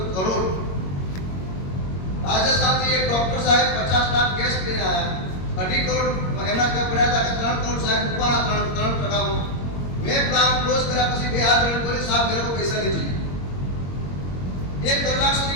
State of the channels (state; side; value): late; right; 22 ms